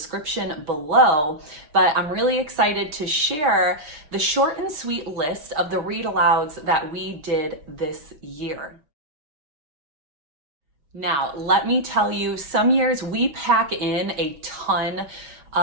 below. But I'm really excited to share the short and sweet list of the read alouds that we did this year. Now, let me tell you, some years we pack in a ton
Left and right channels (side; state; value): left; late; 6.7 ms